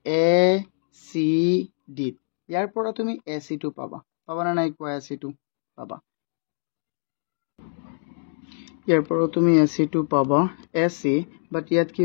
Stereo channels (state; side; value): silent; right; 62 dB below the other